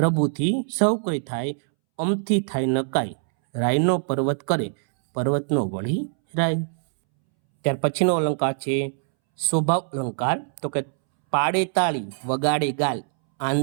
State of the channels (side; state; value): left; silent; 63 dB below the other